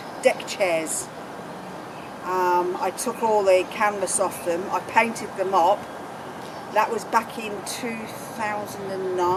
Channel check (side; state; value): both; identical; correlation 1.00